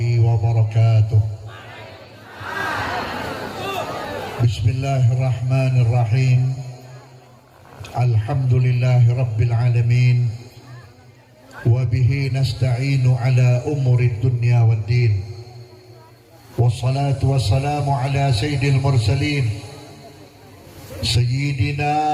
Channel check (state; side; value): identical; both; correlation 1.00